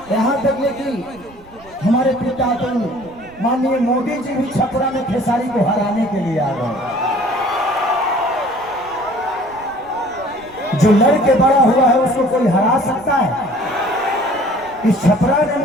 यहां तक कि हमारे पिता तो माननीय मोदी जी भी छपरा में खेसारी को हराने के लिए आ गए। जो लड़के बड़ा हुआ है उसको कोई हरा सकता है? इस छपरा ने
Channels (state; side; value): noise; right; rumble, 24 dB below the sound